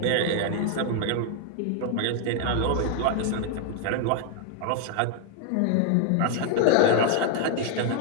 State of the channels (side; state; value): both; different; correlation 0.00